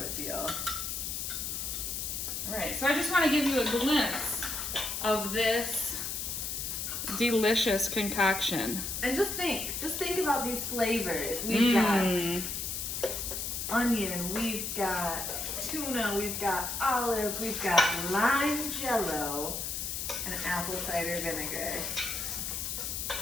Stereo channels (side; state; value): left; noise; hiss, 3 dB below the sound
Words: feel. All right, so I just want to give you a glimpse of this delicious concoction. And just think about these flavors. We've got onion, we've got tuna, we've got olive, we've got lime Jell-O, and apple cider vinegar.